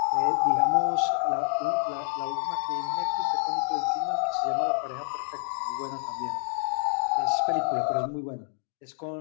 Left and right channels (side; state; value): right; silent; digital silence